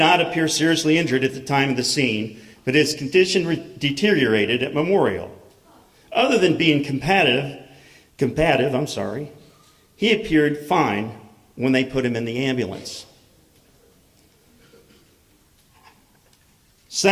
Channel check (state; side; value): identical; both; correlation 1.00